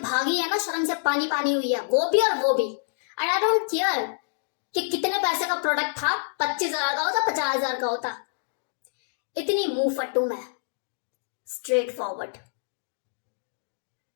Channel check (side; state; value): right; silent; digital silence